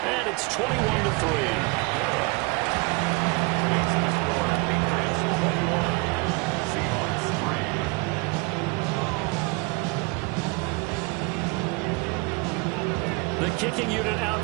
And it's 21-3. The kicking unit out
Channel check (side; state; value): left; quieter; 28.2 dB